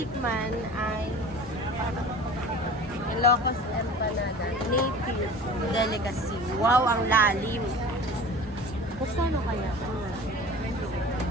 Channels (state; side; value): normal; both; correlation 0.40